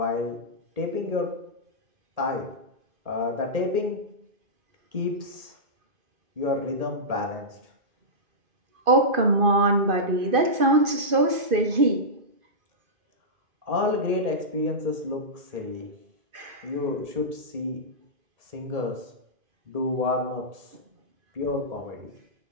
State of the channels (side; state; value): left; late; 2.5 ms